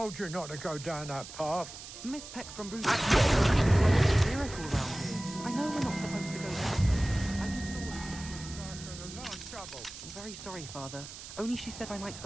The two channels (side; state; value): right; noise; hiss, 13 dB below the sound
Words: you not to go down that path. Miss Peck from Bruce. Miracle around here. I know we're not supposed to go down. I just thought. I'm very sorry, Father. Only she said I might